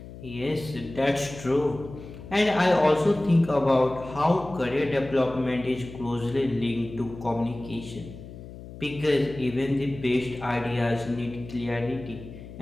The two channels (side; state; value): left; noise; hum, 14 dB below the sound